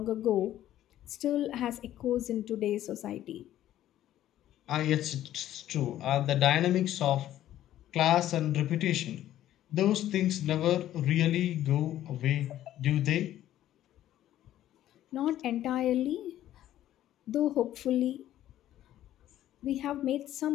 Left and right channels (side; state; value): right; quieter; 12.8 dB